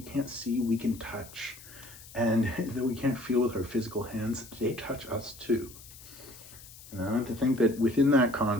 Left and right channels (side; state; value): left; noise; hiss, 18 dB below the sound